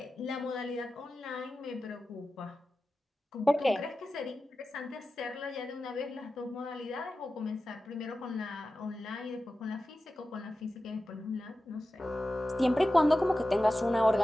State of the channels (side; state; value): both; normal; correlation 0.94